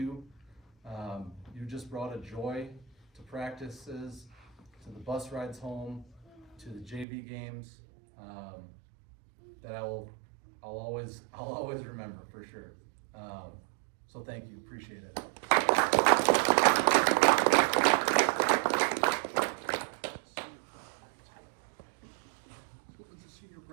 You just brought a joy to practices, to the bus rides home, to the JV games, that I'll always remember for sure. So thank you, appreciate it.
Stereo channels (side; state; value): left; drops out; at 7.1 s